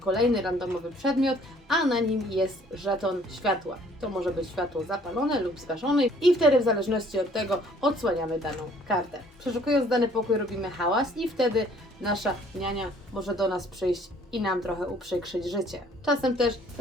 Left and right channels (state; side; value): normal; both; correlation 0.58